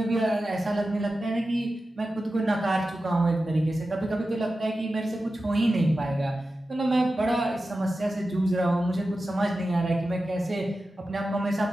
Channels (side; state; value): both; normal; correlation 0.93